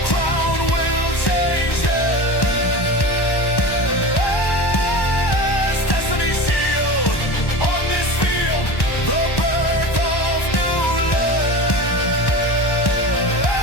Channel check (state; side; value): late; right; 1.1 ms